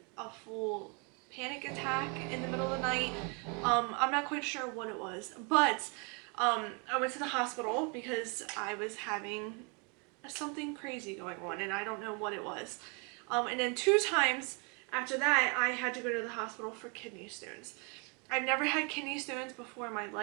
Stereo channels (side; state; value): left; quieter; 34.1 dB